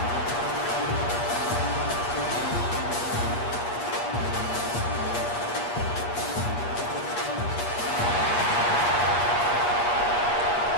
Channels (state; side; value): late; right; 8.4 ms